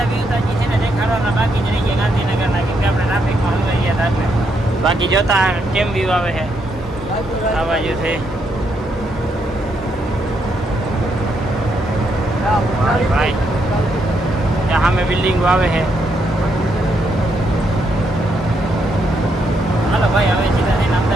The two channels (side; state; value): both; normal; correlation 0.77